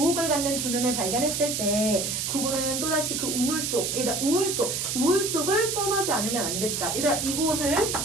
갖는 두 눈을 발견했을 때 구보는 또다시 그 우울 속을 떠나지 않으면 안 됐다. 얘들아 이곳을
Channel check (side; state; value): right; noise; hiss, 1 dB below the sound